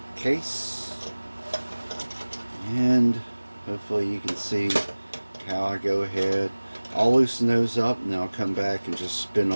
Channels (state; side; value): inverted; both; correlation -1.00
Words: Case. And hopefully you can see how I go ahead. I'll loosen those up and then I'll come back and just spin